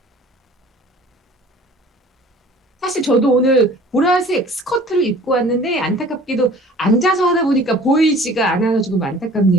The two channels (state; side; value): normal; both; correlation 0.48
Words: 사실 저도 오늘 보라색 스커트를 입고 왔는데 안타깝게도 앉아서 하다 보니까 보이지가 않아서 조금